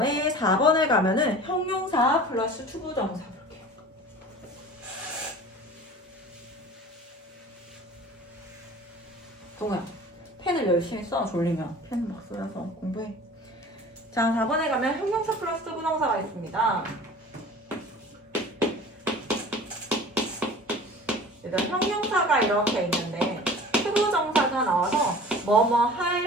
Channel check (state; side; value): normal; both; correlation 0.42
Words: 4번에 가면은 형용사 플러스 투부정사 볼게요. 동우야, 펜을 열심히 써. 졸리면 펜 막 쏘여서 공부해. 자, 4번에 가면 형용사 플러스 투부정사가 있습니다. 일단 형용사가 이렇게 있는데 투부정사가 나와서 뭐뭐